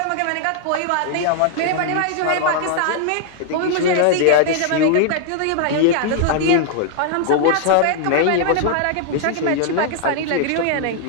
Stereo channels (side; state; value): both; different; correlation 0.00